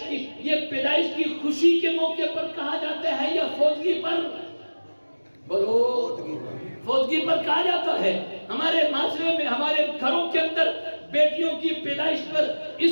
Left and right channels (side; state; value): both; inverted; correlation -1.00